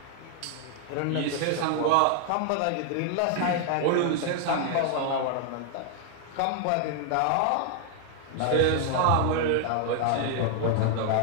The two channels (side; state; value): both; different; correlation 0.00